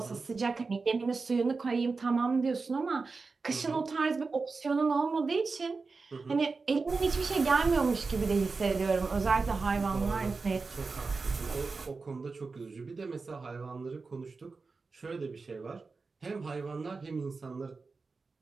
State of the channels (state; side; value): quieter; left; 4.3 dB